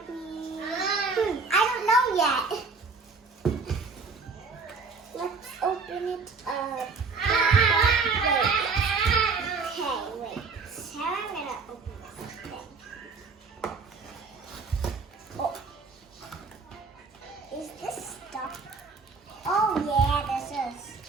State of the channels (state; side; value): quieter; left; 4.6 dB